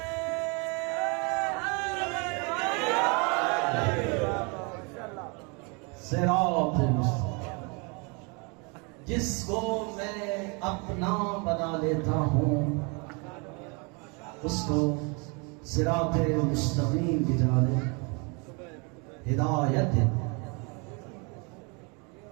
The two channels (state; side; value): quieter; left; 32.1 dB